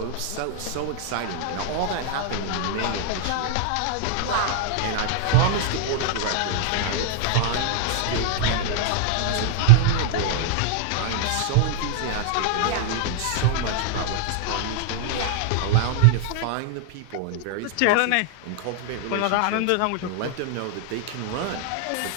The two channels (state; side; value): different; both; correlation -0.01